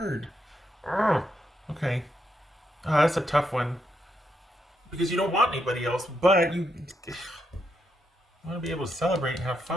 Ugh. Okay. That's a tough one. Because you don't want anybody else, but you want to be able to celebrate and have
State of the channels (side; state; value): both; normal; correlation 0.81